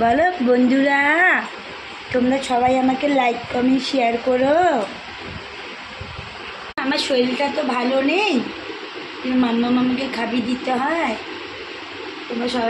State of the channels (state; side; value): identical; both; correlation 1.00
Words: বলো বন্ধুরা, তোমরা সবাই আমাকে লাইক কমেন্ট শেয়ার করো। আমার শরীরটা তো ভালো নেই, মাম্মা মামাকে খাবি দিতে হয়। তোমরা